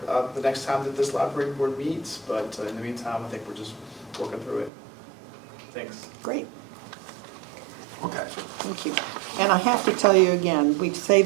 the next time that this library board meets, but in the meantime, I think we're just working through it. Thanks. Great, Okay. thank you. And I have to tell you again, we say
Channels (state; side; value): drops out; left; at 4.7 s